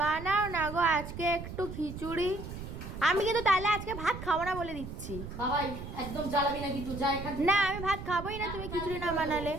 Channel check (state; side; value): noise; right; rumble, 9 dB below the sound